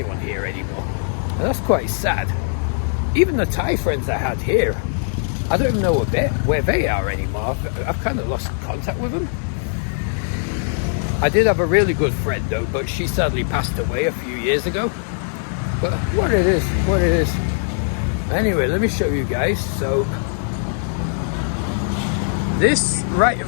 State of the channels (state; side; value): silent; right; digital silence